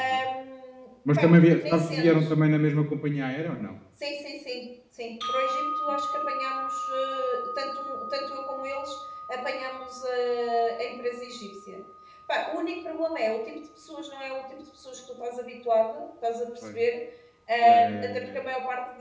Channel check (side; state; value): both; identical; correlation 1.00